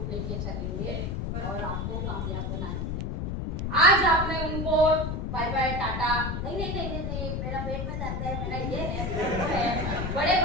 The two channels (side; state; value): left; noise; rumble, 2 dB below the sound